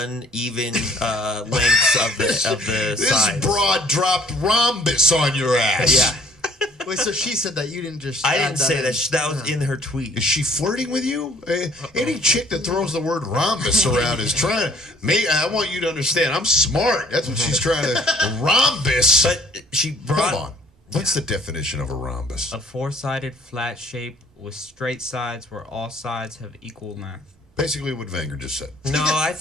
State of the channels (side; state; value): both; normal; correlation 0.58